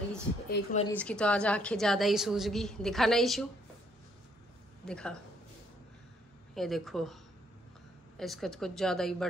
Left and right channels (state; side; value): normal; both; correlation 0.68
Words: एक मरीज की तो आज आंखें ज़्यादा ही सूज गई। दिखा ना इशू, दिखा, ये देखो इसका तो कुछ ज़्यादा ही